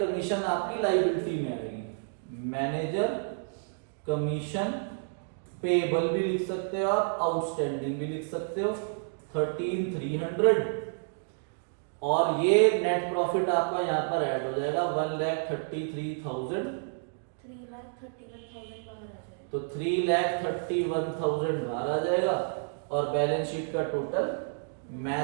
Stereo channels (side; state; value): left; silent; digital silence